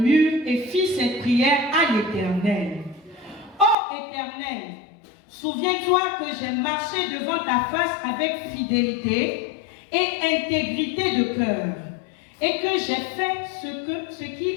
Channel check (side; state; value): right; drops out; at 3.8 s